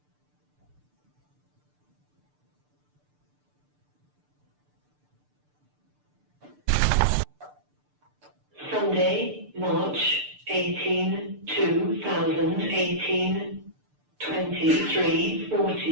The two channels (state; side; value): late; left; 6.8 ms